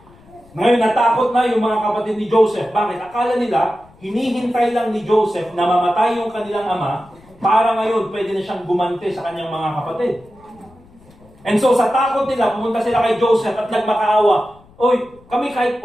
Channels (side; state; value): left; noise; rumble, 27 dB below the sound